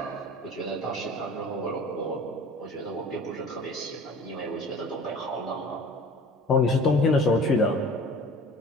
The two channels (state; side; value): normal; both; correlation 0.44